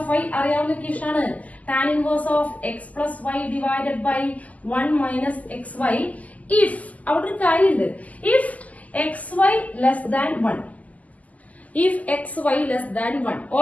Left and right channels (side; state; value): right; late; 0.075 ms